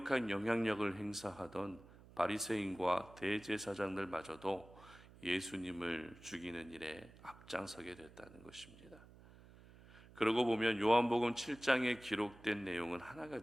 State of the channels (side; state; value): right; noise; hum, 21 dB below the sound